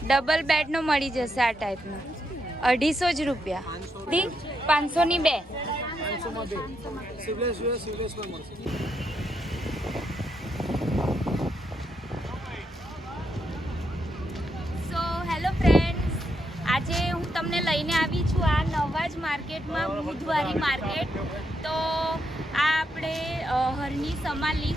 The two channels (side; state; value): both; normal; correlation 0.80